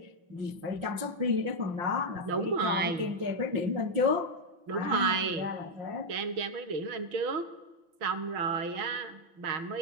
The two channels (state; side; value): late; left; 5.7 ms